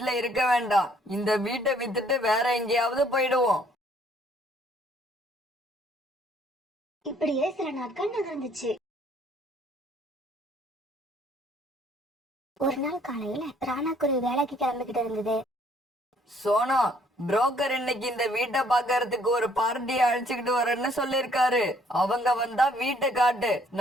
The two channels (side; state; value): both; normal; correlation 0.63